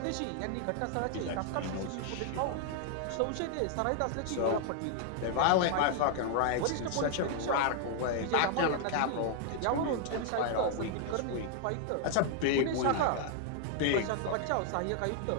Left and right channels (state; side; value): different; both; correlation 0.00